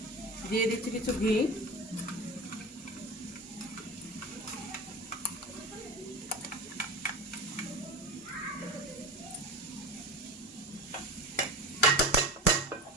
দিয়ে দিচ্ছি কিছু ঘি।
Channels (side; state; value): both; normal; correlation 0.29